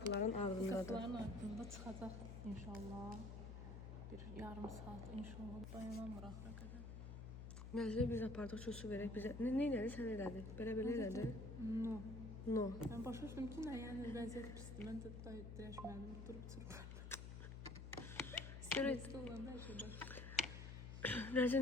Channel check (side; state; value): left; noise; hum, 8 dB below the sound